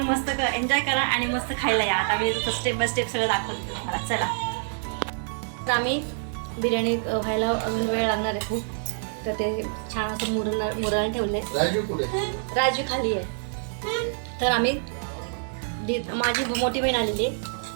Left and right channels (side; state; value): left; silent; 59 dB below the other